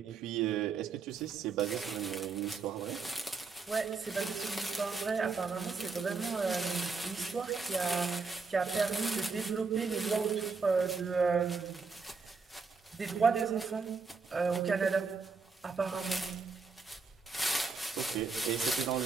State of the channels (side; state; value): left; quieter; 4.7 dB